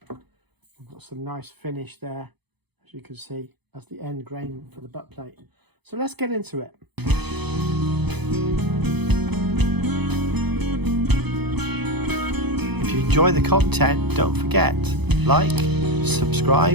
We've got some nice finish there, as you can see, as the end grain for the butt plate. So let's get into it. If you enjoy the content, don't forget, like,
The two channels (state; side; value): late; left; 0.98 ms